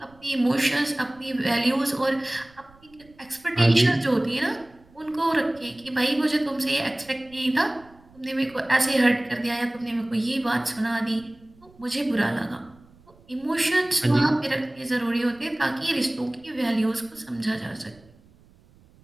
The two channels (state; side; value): noise; right; rumble, 27 dB below the sound